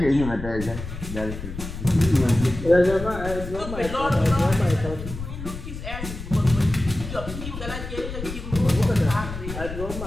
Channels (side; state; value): left; noise; rumble, 8 dB below the sound